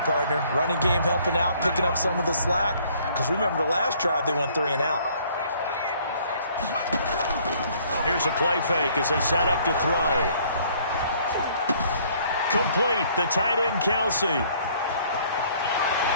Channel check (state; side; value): inverted; both; correlation -0.60